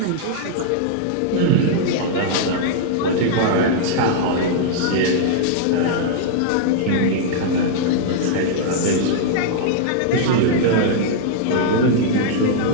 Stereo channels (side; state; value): both; different; correlation -0.01